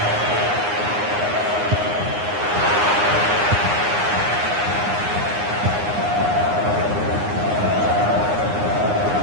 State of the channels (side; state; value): left; late; 9.7 ms